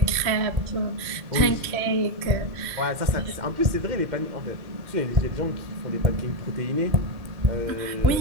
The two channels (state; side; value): late; left; 3.0 ms